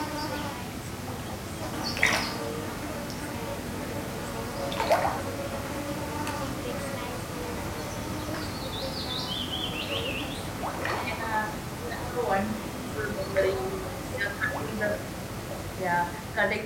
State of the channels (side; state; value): both; identical; correlation 1.00